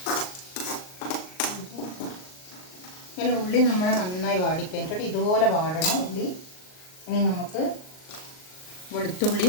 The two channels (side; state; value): right; late; 38 ms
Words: ഇങ്ങനെ ഉള്ളി നമ്മൾ നന്നായി വാടിക്കഴിഞ്ഞിട്ട് ഇതുപോലെ വാടണം ഉള്ളി. ഇനി നമുക്ക്